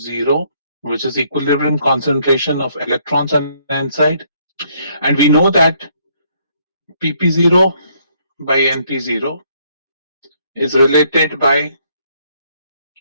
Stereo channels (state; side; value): inverted; both; correlation -0.68